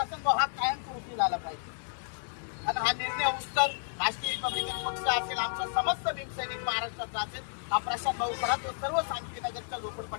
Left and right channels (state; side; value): silent; right; digital silence